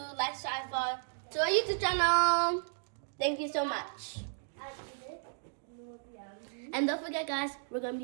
like, subscribe to our YouTube channel. Thank you so much. And don't forget, guys, we're going to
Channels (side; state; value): left; silent; digital silence